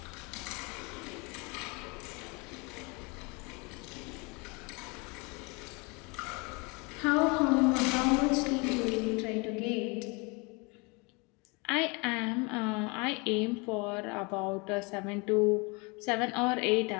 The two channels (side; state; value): right; quieter; 29.4 dB